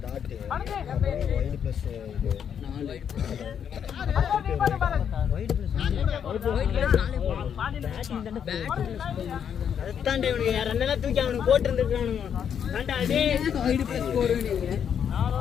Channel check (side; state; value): right; quieter; 8.2 dB